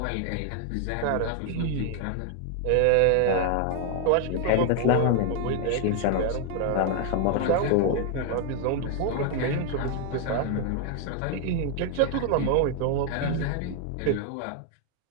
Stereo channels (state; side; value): different; both; correlation 0.01